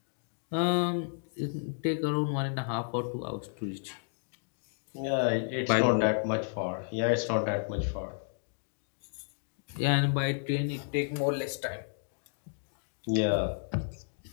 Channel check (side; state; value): right; silent; digital silence